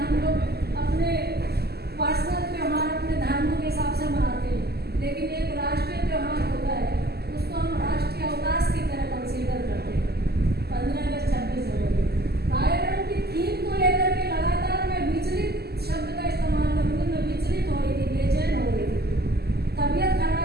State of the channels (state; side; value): late; left; 0.46 ms